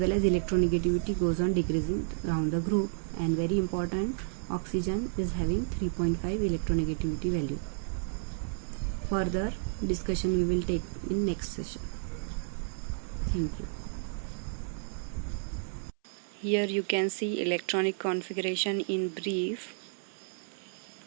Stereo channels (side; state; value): left; silent; 57 dB below the other